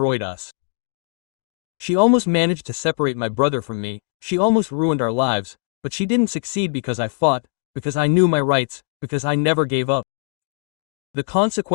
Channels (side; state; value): right; silent; 64 dB below the other